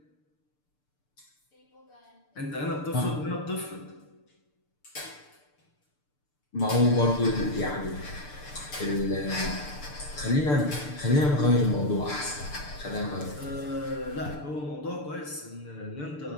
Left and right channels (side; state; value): right; late; 6.8 ms